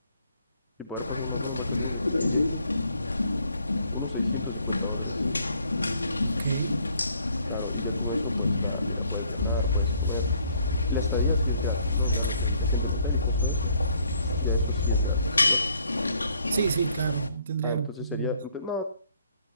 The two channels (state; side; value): inverted; both; correlation -0.65